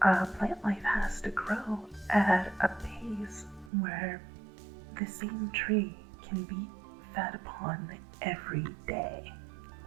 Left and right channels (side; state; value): left; drops out; at 3.7 s